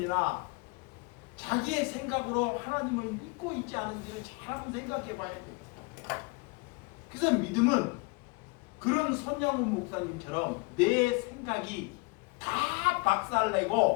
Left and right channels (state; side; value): quieter; right; 28.3 dB